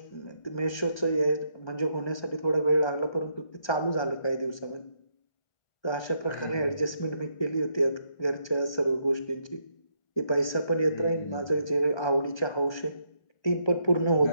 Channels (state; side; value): late; right; 1.2 ms